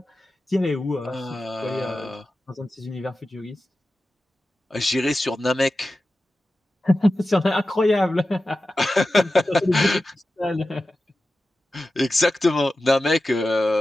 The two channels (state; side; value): normal; both; correlation 0.94